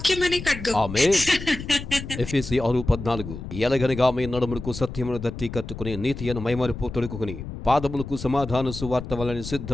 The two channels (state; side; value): noise; left; rumble, 9 dB below the sound